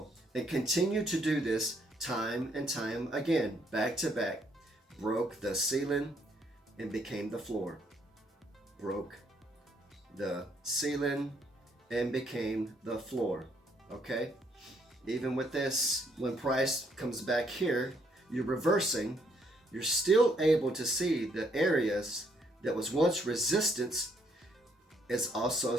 and continue to do this time and time again, back to back. Broke the ceiling and became the floor. Broke the ceiling and became the floor. Okay? Even with this, when price comes back here, you're reversing, you're still able to see the areas that was once resistance is also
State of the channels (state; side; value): normal; both; correlation 0.69